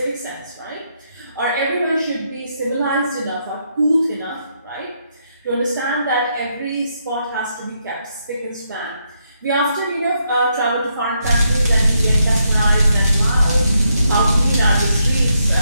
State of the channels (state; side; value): inverted; both; correlation -0.78